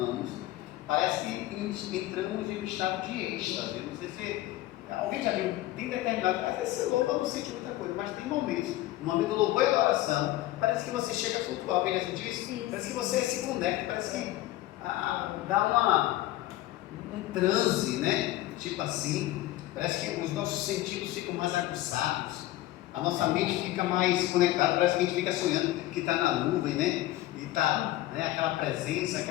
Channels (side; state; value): right; quieter; 15.9 dB